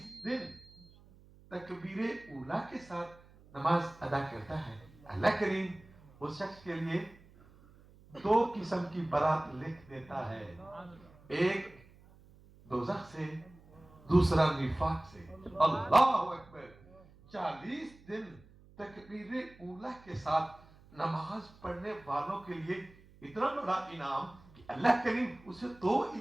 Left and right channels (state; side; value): noise; right; hum, 24 dB below the sound